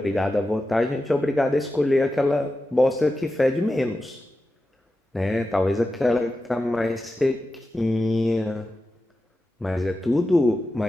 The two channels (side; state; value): both; normal; correlation 0.91